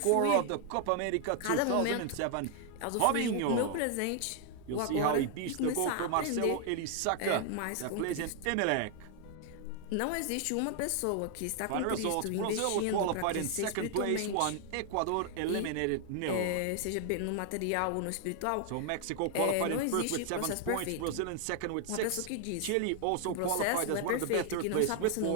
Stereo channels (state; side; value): different; both; correlation 0.00